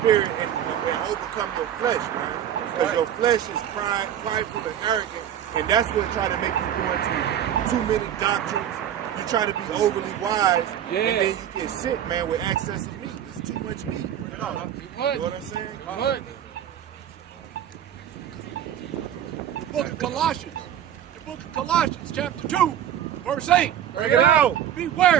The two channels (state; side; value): quieter; left; 10.3 dB